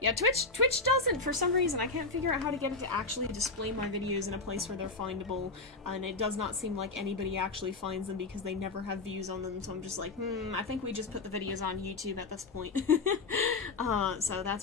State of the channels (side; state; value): right; quieter; 3.7 dB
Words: Twitch doesn't, for some reason. I can't figure out how to get it to actually display my videos in a place where they're findable, and it does not seem like anybody actually finds them because they never have views on them, so I'm just like, I think we just put the videos on YouTube at this point. So